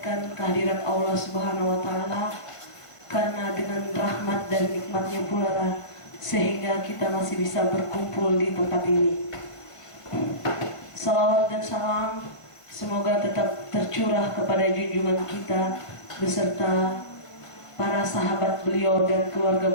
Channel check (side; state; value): right; late; 1.5 ms